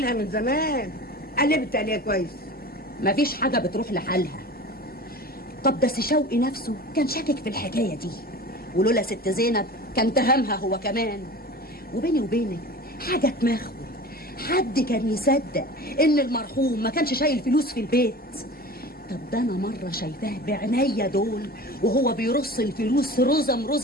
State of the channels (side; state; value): both; normal; correlation 0.36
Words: من زمان. قلبت عليها كويس. مفيش حاجة بتروح لحالها. طب ده سي شوقي نفسه كان شاكك في الحكاية دي، ولولا ست زينب كان تهمها هو كمان. وبيني وبينك حاجة تمخول، حد كان يصدق ان المرحوم ما كانش شايل فلوس في البيت؟ طب ده انا مرة شايفاه بعينيا دول وهو بيرص الفلوس